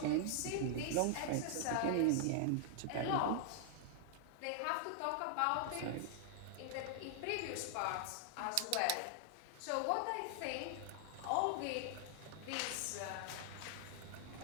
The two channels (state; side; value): different; both; correlation -0.01